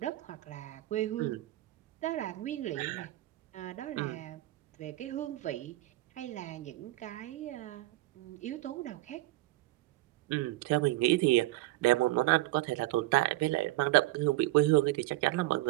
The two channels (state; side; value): quieter; left; 17.6 dB